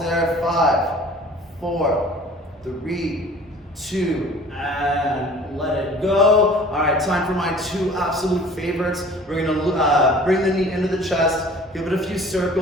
there. 5, 4, 3, 2, and let it go. All right, time for my 2 absolute favorites. We're gonna bring the knee into the chest, give it a few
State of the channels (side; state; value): both; normal; correlation 0.47